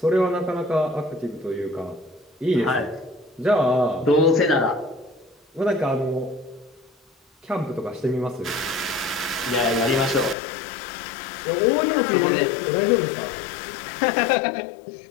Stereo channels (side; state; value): right; drops out; at 10.4 s